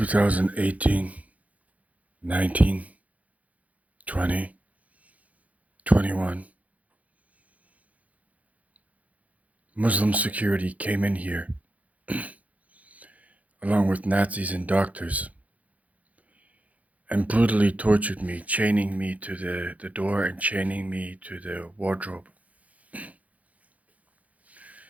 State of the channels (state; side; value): late; left; 0.070 ms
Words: 19, 20, 21. Muslim security came in here, along with Nazis and doctors, and brutally tortured me, chaining me to the door and chaining me to the wardrobe